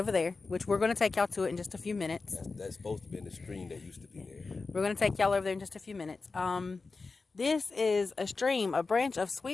there, which we're going to take y'all to it in just a few minutes. That's supposed to be in the stream that used to be there. We're going to take y'all over there in just a few minutes. This is a stream, a branch of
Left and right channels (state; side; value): quieter; right; 4.1 dB